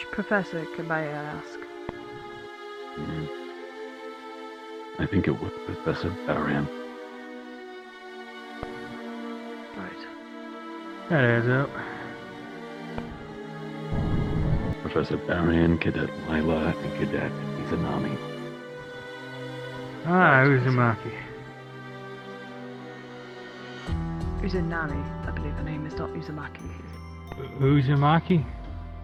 professor, can I ask? I think it was Professor Barian. Right. That adds up. Professor Barian, Cadet Lila, and Cadet Izanami. Uzumaki. Uzanami, I believe her name is not Uzumaki. Uzumaki?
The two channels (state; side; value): identical; both; correlation 1.00